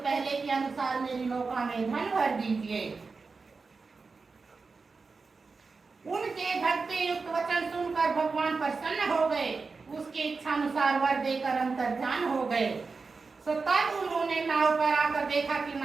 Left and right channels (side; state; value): left; quieter; 4.4 dB